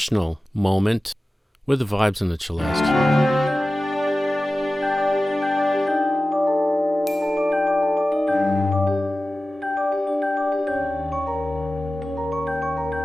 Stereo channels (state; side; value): normal; both; correlation 0.95